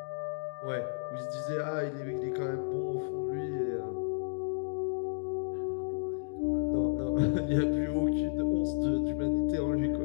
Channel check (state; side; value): silent; right; digital silence